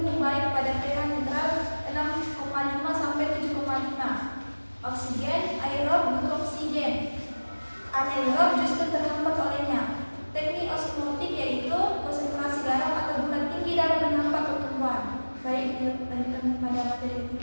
baik pada pH netral 6,5 sampai 7,5. Oksigen, aerob butuh oksigen. Anaerob justru terhambat olehnya. Teknik osmotik yaitu konsentrasi garam atau gula tinggi dalam menghambat pertumbuhan. Baik, lanjutkan pada materi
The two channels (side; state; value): both; inverted; correlation -1.00